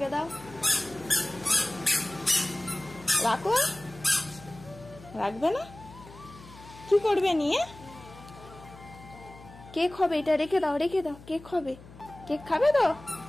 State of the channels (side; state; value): left; noise; hum, 19 dB below the sound